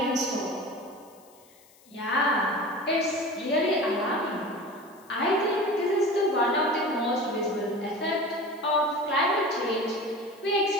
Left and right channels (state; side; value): noise; left; hiss, 28 dB below the sound